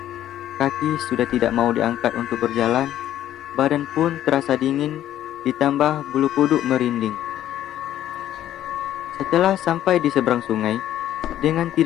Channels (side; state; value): right; quieter; 12.1 dB